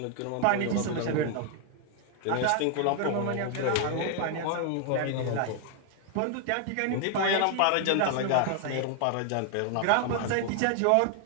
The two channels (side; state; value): both; different; correlation 0.00